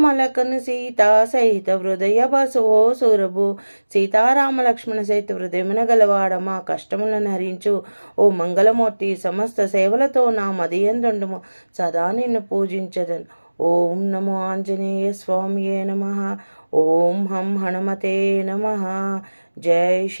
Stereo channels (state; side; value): inverted; both; correlation -1.00